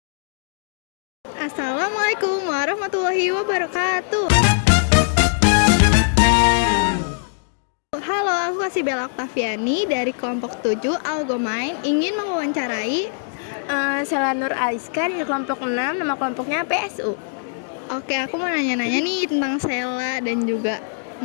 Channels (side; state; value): right; silent; digital silence